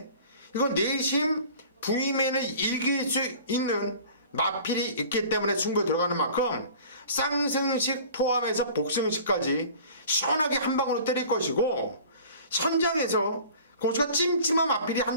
이건 내심 부이맨을 이길 수 있는 마필이 있기 때문에 승부에 들어가는 만큼 쌍승식 포함해서 복승식까지 시원하게 한 방으로 때릴 것이고, 현장에서 고수가 찜찜한 마필이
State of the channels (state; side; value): inverted; both; correlation -0.45